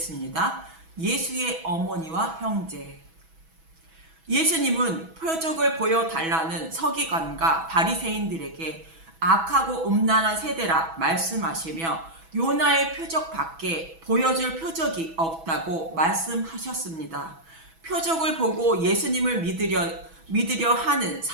예수의 어머니와 형제. 예수님은 표적을 보여달라는 서기관과 바리새인들에게 악하고 음란한 세대라 말씀하시며 요나의 표적 밖에 보여줄 표적이 없다고 말씀하셨습니다. 표적을 보고 예수님을 믿으려 하는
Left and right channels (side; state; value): left; late; 6.1 ms